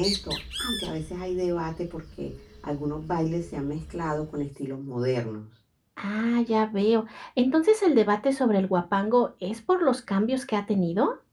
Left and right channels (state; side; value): identical; both; correlation 1.00